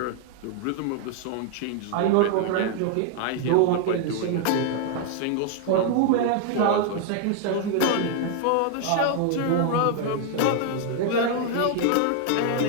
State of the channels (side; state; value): both; different; correlation 0.00